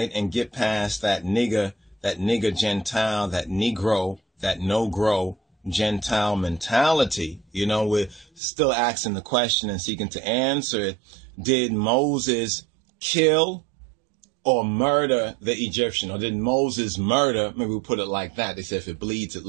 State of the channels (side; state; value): left; drops out; at 8.4 s